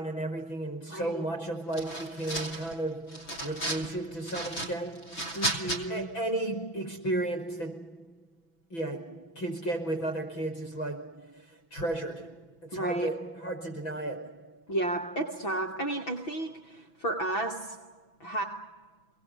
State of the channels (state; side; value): late; right; 6.0 ms